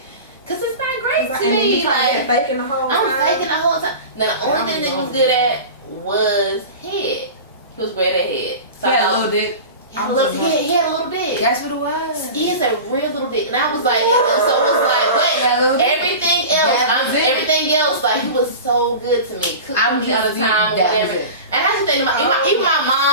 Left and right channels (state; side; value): inverted; both; correlation -0.32